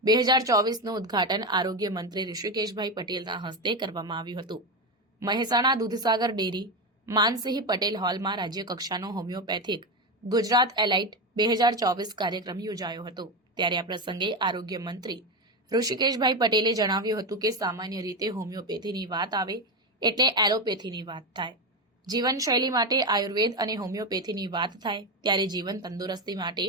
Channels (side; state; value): both; normal; correlation 0.14